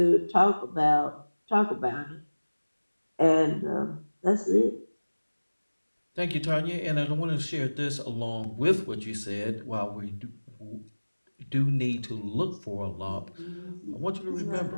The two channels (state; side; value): inverted; both; correlation -1.00